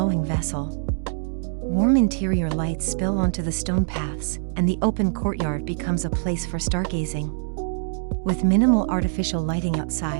vessel. Warm interior lights spill onto the stone paths, and the open courtyard becomes a place for stargazing. With minimal artificial lighting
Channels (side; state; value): left; silent; digital silence